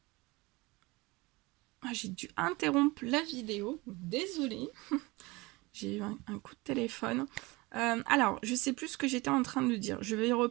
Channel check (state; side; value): quieter; left; 23.4 dB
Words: J'ai dû interrompre la vidéo, désolée. J'ai eu un coup de téléphone. Alors, je sais plus ce que j'étais en train de dire. Je vais